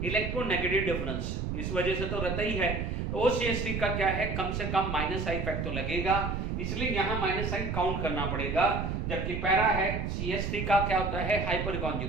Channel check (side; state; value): right; noise; rumble, 2 dB below the sound